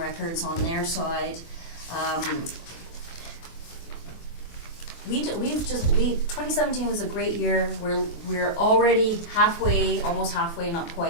on their side. 2017 was a great year. We're already almost halfway, not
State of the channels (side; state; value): right; late; 23 ms